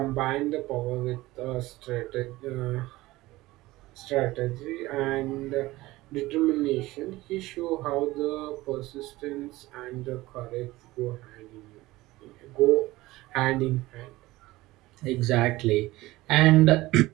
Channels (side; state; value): left; quieter; 18.7 dB